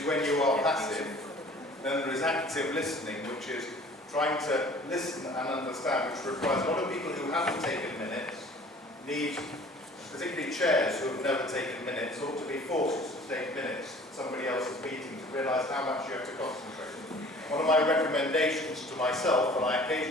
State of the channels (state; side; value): normal; both; correlation 0.49